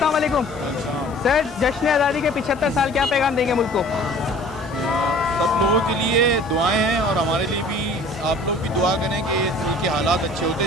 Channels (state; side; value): noise; left; hiss, 25 dB below the sound